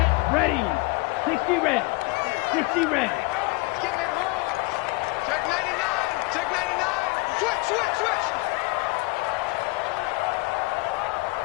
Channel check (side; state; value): right; quieter; 24.3 dB